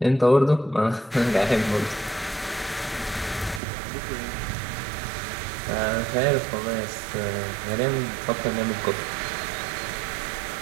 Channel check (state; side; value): drops out; left; at 3.6 s